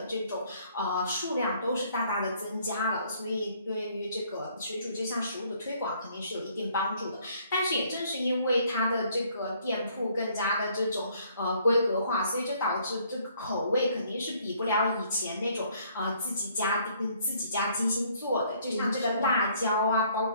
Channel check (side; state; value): both; inverted; correlation -0.63